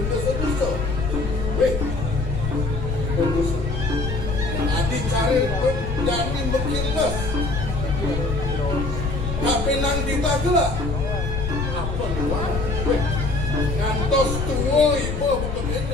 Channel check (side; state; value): left; noise; rumble, 4 dB below the sound